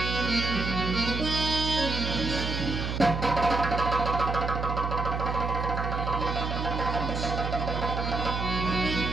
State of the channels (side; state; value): right; noise; hum, 3 dB below the sound